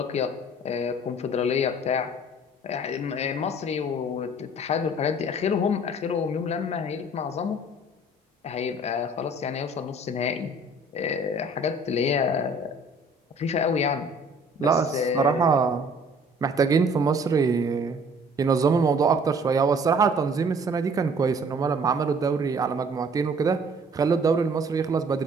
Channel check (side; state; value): both; normal; correlation 0.53